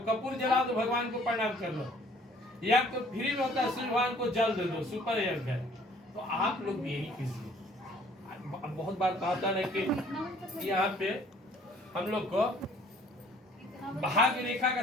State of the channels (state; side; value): normal; both; correlation 0.57